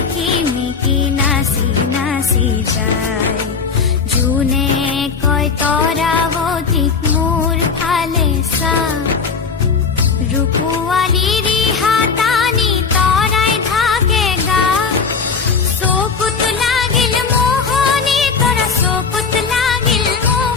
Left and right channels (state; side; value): quieter; right; 5.4 dB